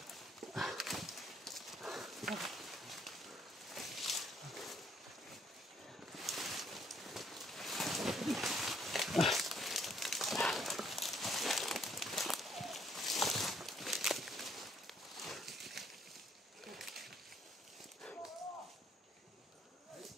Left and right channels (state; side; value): normal; both; correlation 0.67